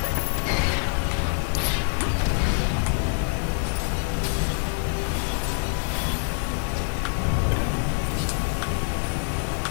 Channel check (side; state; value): right; silent; 57 dB below the other